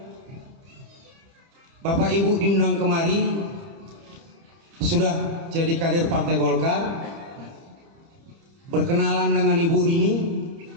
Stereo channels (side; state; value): left; late; 30 ms